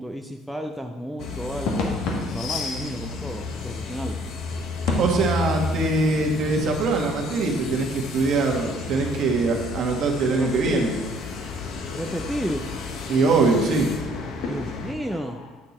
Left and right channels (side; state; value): both; normal; correlation 0.60